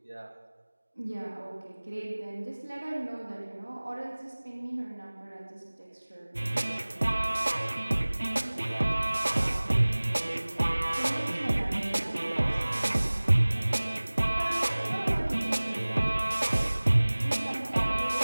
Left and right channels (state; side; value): inverted; both; correlation -1.00